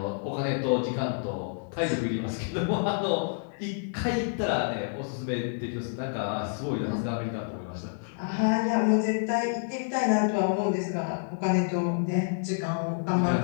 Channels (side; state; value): right; silent; digital silence